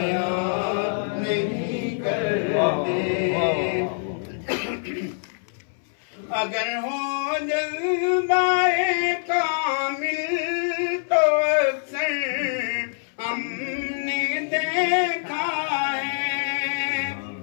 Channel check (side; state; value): right; silent; 62 dB below the other